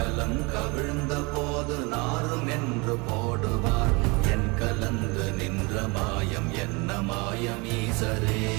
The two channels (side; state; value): left; quieter; 27.6 dB